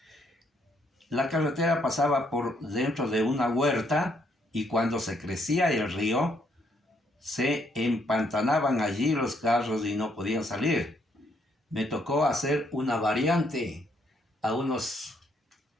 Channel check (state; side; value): normal; both; correlation 0.71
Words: la carretera pasaba por dentro de una huerta y cuando se crecía el río, se empantanaban allí los carros y no podían salir. Me tocó hacer una variante